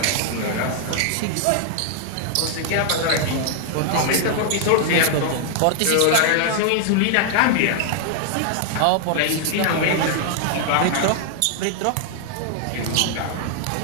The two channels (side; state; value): both; different; correlation 0.00